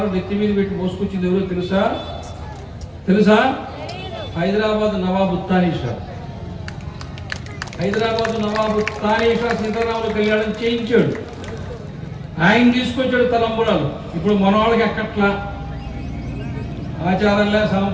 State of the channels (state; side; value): identical; both; correlation 1.00